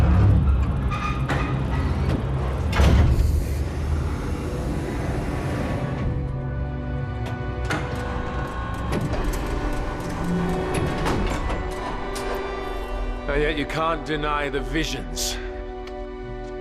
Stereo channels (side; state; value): both; identical; correlation 1.00